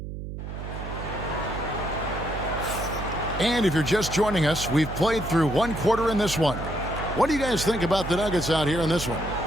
And if you're just joining us, we've played through one quarter in this one. What do you guys think about the Nuggets out here in this one?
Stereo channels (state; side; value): noise; right; hum, 8 dB below the sound